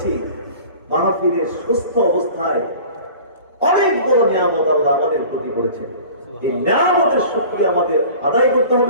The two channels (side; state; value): both; inverted; correlation -0.43